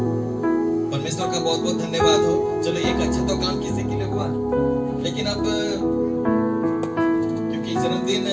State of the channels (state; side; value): identical; both; correlation 1.00